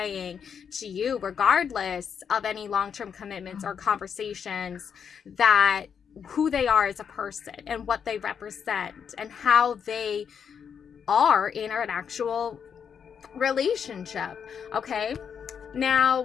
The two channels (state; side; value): quieter; right; 7.2 dB